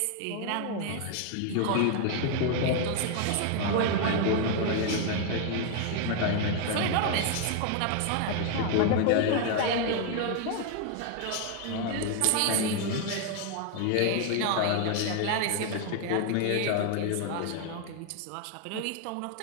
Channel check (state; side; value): different; both; correlation 0.00